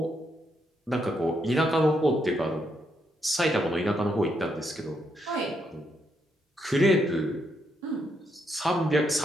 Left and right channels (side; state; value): both; normal; correlation 0.77